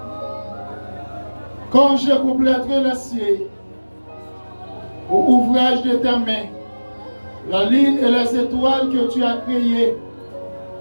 Quand je compléterai le ciel au ouvrage de tes mains, la lune et les étoiles que tu as créées,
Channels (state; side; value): inverted; both; correlation -1.00